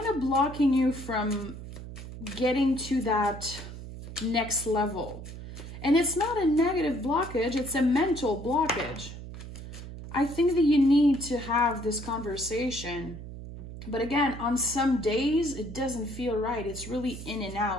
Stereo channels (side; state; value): right; noise; hum, 11 dB below the sound